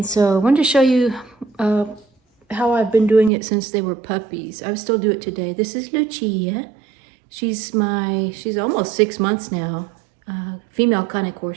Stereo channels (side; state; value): left; drops out; at 3.3 s